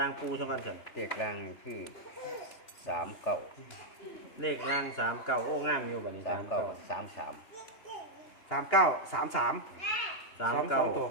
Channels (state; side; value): late; right; 2.8 ms